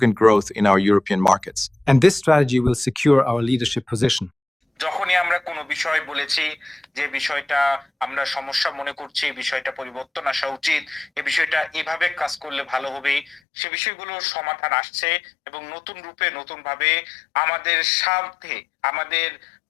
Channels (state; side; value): drops out; right; at 13.4 s